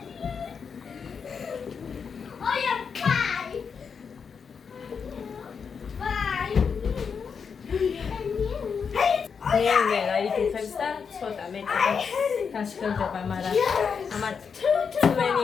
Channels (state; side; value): quieter; right; 6.1 dB